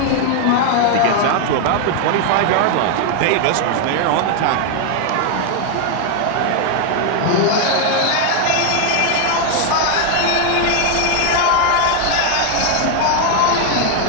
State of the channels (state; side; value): different; both; correlation 0.00